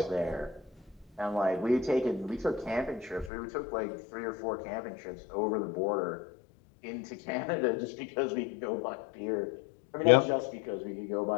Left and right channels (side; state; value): right; drops out; at 3.3 s